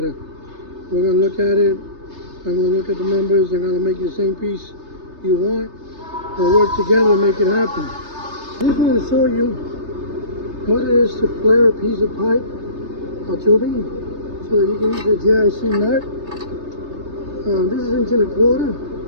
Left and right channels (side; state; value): left; late; 3.3 ms